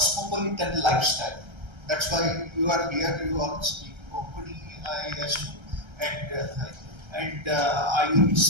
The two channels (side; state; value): left; late; 1.3 ms